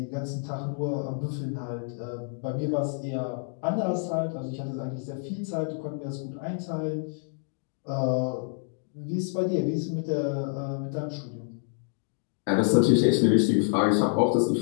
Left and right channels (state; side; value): silent; right; 59 dB below the other